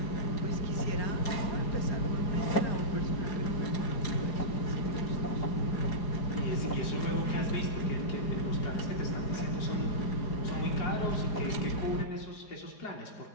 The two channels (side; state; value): right; late; 4.9 ms